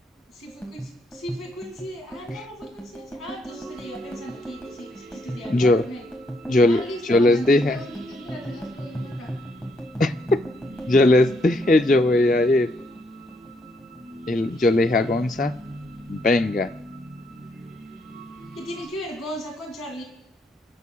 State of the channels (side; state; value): both; normal; correlation 0.73